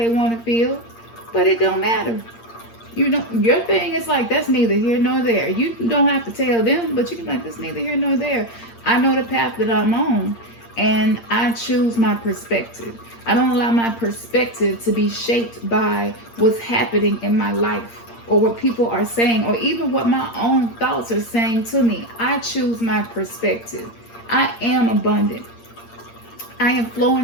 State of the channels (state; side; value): late; right; 8.7 ms